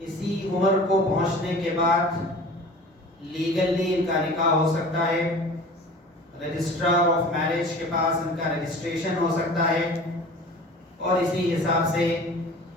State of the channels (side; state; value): both; normal; correlation 0.41